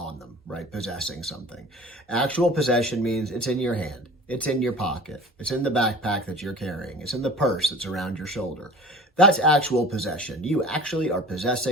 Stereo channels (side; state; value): both; normal; correlation 0.41